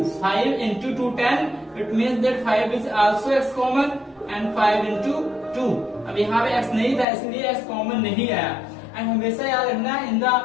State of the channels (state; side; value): drops out; right; at 7.1 s